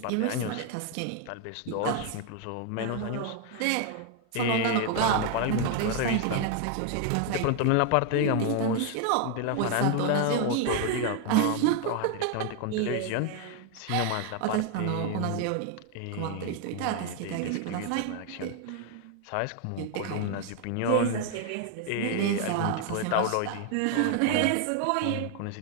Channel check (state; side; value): different; both; correlation 0.01